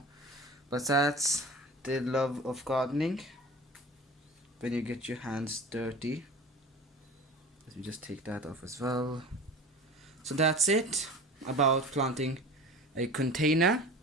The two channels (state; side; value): normal; both; correlation 0.37